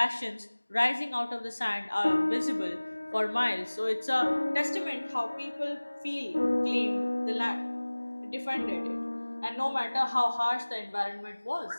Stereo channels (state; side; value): inverted; both; correlation -1.00